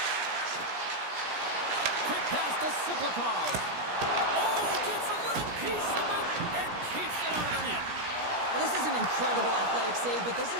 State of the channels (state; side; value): late; left; 17 ms